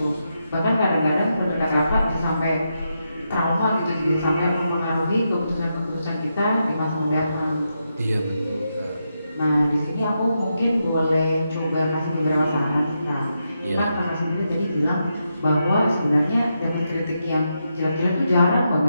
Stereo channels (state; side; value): inverted; both; correlation -0.85